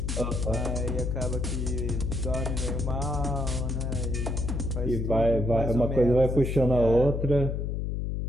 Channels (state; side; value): noise; left; hum, 1 dB below the sound